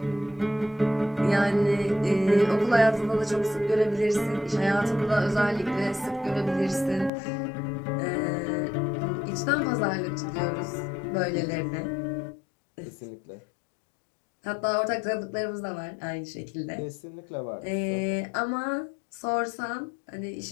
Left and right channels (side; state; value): right; drops out; at 7.1 s